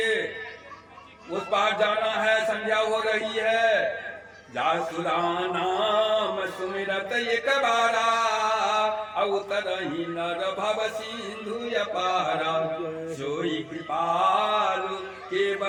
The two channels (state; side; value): identical; both; correlation 1.00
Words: उस पार जाना है, संध्या हो रही है। जासुरा नाम सुमिरत एक बारा, अवतरहि नर भव सिंधु अपारा। सोई कृपालु